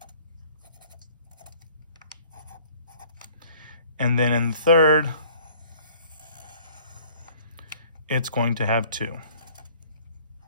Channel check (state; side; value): inverted; both; correlation -0.54